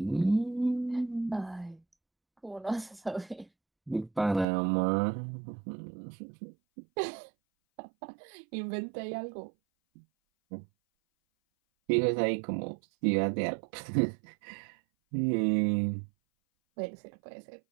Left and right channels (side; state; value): left; drops out; at 4.5 s